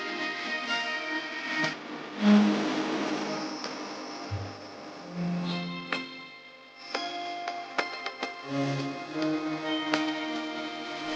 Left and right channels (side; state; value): both; identical; correlation 1.00